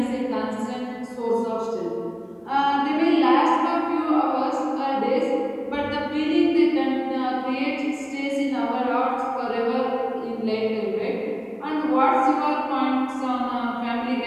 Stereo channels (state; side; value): identical; both; correlation 1.00